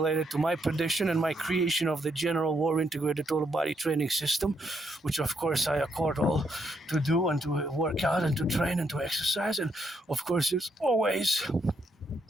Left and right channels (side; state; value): both; normal; correlation 0.76